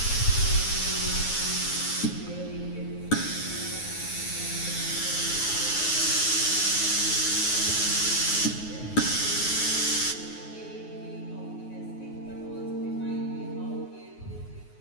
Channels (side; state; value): right; late; 9.5 ms